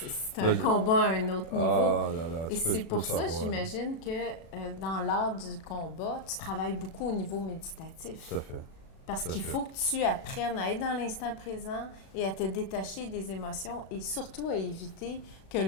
c'est un combat à un autre niveau. Ah là là, et c'est pour ça, j'imagine, que dans l'art du combat, tu travailles beaucoup au niveau méditatif. Tout à fait. Parce qu'il faut que tu apprennes à être dans l'instant présent et à te détacher des émotions et surtout à éviter que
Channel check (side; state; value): right; late; 36 ms